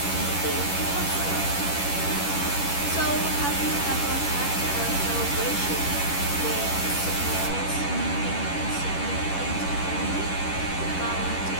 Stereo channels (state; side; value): late; right; 11 ms